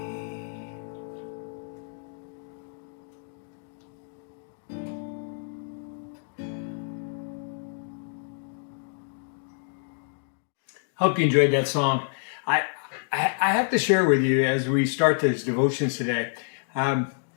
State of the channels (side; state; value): right; silent; digital silence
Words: Hope you enjoyed that song. I have to share with you as we start these devotions today.